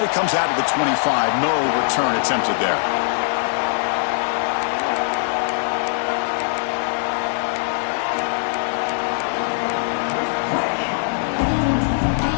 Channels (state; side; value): silent; right; digital silence